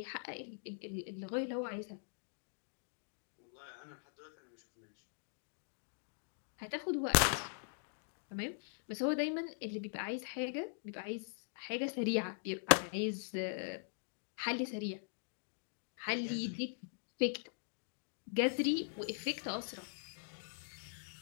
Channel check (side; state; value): right; silent; digital silence